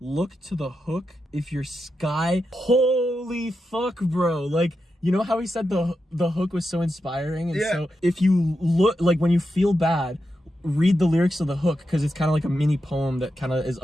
to the hook if your sky. Holy fuck, bro. Like, you know how he said the hook was so inspiring? And so if you look, like when you feel bad, read the lyrics of the hook, because it's kind of like a mini poem that kind of is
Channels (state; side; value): normal; both; correlation 0.87